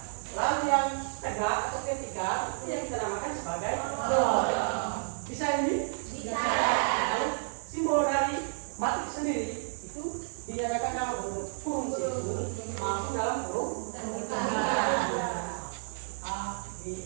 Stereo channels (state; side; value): silent; left; digital silence